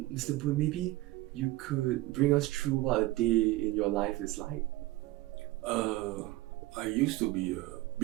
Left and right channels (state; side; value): quieter; left; 18.2 dB